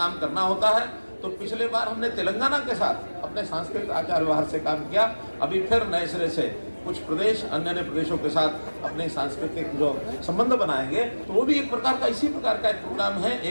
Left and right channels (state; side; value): inverted; both; correlation -1.00